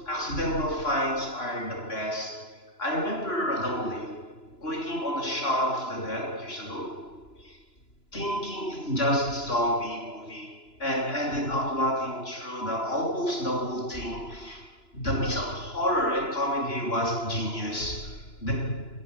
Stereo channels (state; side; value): late; right; 2.9 ms